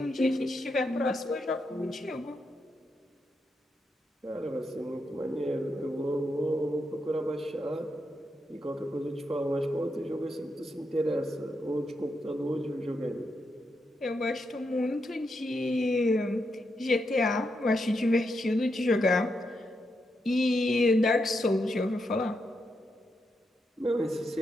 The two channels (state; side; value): normal; both; correlation 0.83